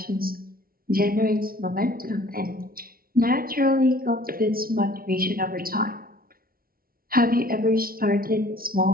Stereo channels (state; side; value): late; left; 0.43 ms